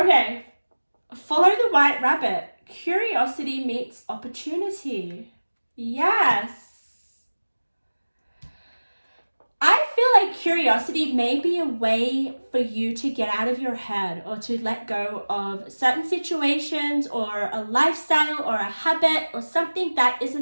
follow the white rabbit. Curiosity meets opportunity. Yes. I feel like curiosity may be a way for you to get out of your head, or to let go of certain situations or a lifestyle or a habit or something that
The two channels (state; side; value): inverted; both; correlation -1.00